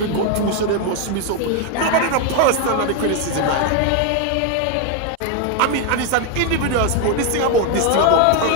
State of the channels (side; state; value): both; different; correlation 0.01